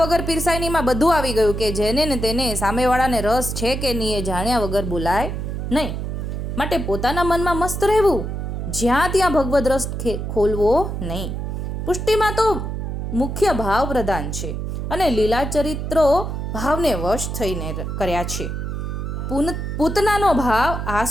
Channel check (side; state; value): right; noise; hum, 4 dB below the sound